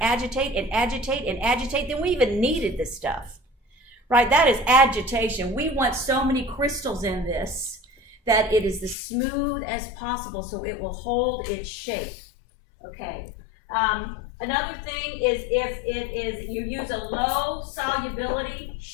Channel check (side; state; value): right; drops out; at 9.0 s